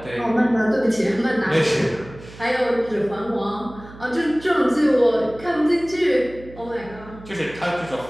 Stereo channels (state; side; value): noise; right; hum, 18 dB below the sound